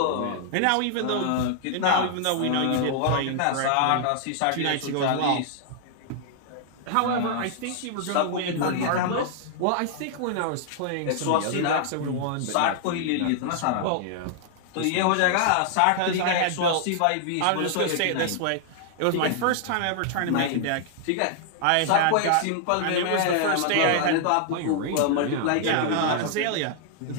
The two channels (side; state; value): both; different; correlation 0.00